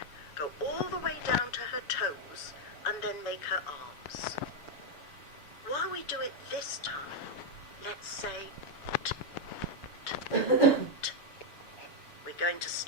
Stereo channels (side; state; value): right; late; 6.9 ms